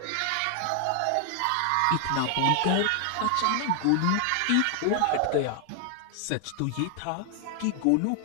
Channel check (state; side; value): different; both; correlation 0.00